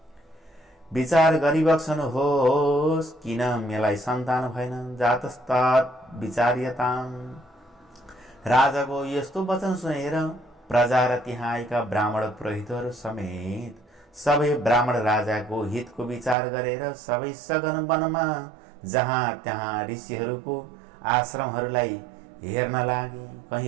विचार गरिबक्सनुहोस्, किन मलाई सन्तान भएन, जातस्तत् विचार्यताम्। राजाको यस्तो वचन सुनेर प्रजा र त्यहाँ आएका ब्राह्मण पुरोहितहरू समेत सबै ब्राह्मण राजाको हितको विचार गरेर सबै सघन वनमा जहाँ त्यहाँ ऋषिहरूको आश्रमहरूलाई हेर्न लागे।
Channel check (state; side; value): drops out; left; at 16.4 s